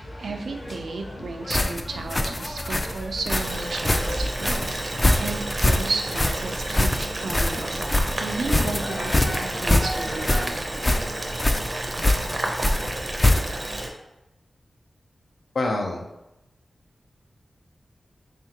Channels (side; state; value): both; normal; correlation 0.95